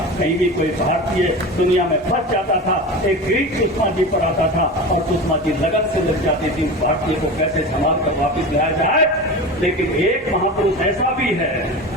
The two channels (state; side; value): normal; both; correlation 0.29